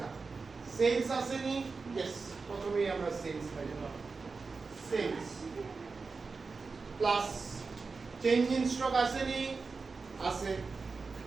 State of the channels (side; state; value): left; quieter; 4.4 dB